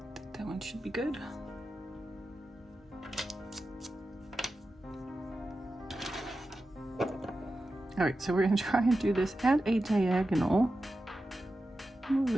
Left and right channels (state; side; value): normal; both; correlation 0.92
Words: think that one should be good. All right, so we're gonna try and do this at a diagonal. Move